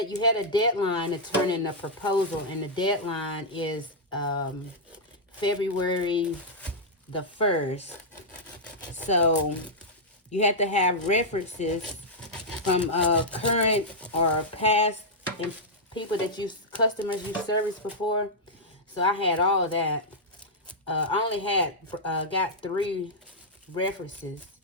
you had a deadline to turn in a proposal. And the deadline is February the 1st. So you have to have references from current or past people that customers you serviced before. So I had all of that. I only had got 3 references,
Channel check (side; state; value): both; normal; correlation -0.08